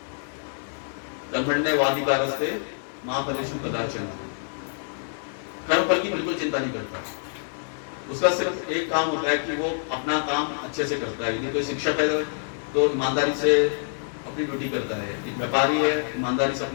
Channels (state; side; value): silent; right; digital silence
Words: कर्मण्येवाधिकारस्ते मा फलेषु कदाचन। कर्म फल की बिल्कुल चिंता नहीं करता। उसका सिर्फ एक काम होता है कि वो अपना काम अच्छे से करता है। यदि कोई शिक्षक है तो ईमानदारी से अपनी ड्यूटी करता है। एक व्यापारी है ईमानदारी से